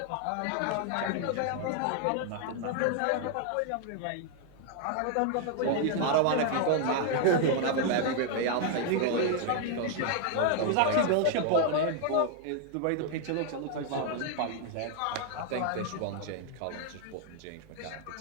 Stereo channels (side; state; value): both; different; correlation 0.00